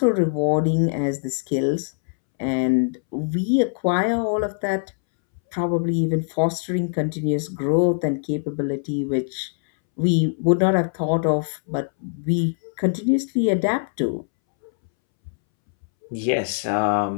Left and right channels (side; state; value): right; silent; 64 dB below the other